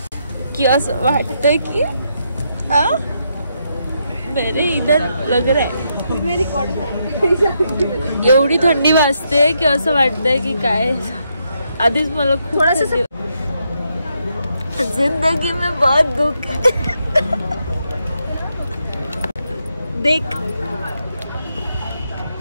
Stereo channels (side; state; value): both; inverted; correlation -0.80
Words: की असं वाटतंय की मेरे इधर लग रहा है. एवढी थंडी वाजते की असं वाटतंय की काय. आधीच मला थोडासा जिंदगी में बहुत दुख है. देख